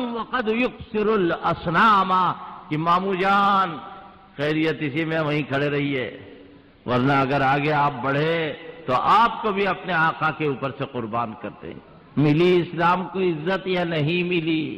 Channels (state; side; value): identical; both; correlation 1.00